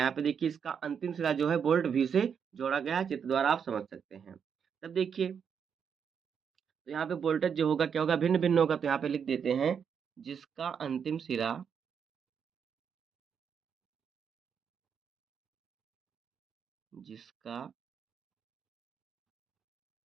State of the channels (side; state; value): left; quieter; 7.2 dB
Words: यहाँ पे देखिए, इसका अंतिम सिरा जो है वोल्ट भी से जोड़ा गया है। चित्र द्वारा आप समझ सकते हैं। तब देखिए, तो यहाँ पे वोल्टेज जो होगा क्या होगा, भिन्न भिन्न होगा। तो यहाँ पे लिख देते हैं जिसका अंतिम सिरा जिसका